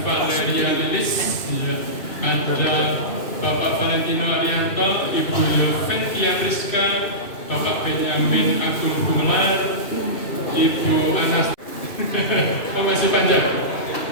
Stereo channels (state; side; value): late; right; 2.6 ms